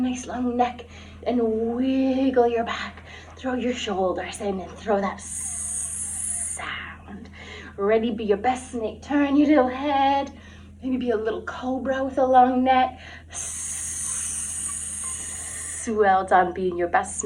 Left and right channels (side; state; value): both; identical; correlation 1.00